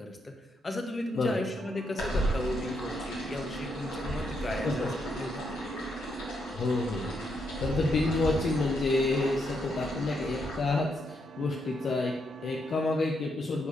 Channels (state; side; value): normal; both; correlation 0.79